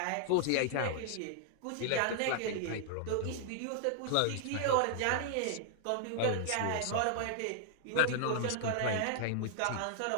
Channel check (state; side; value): different; both; correlation 0.00